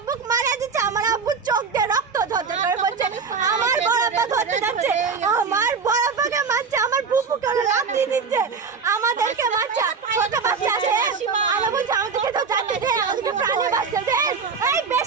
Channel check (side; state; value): left; quieter; 5.4 dB